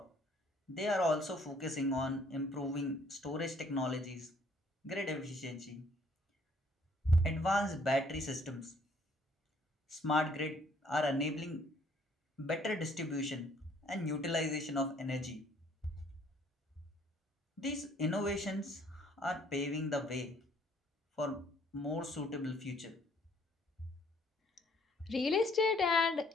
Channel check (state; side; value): normal; both; correlation 0.62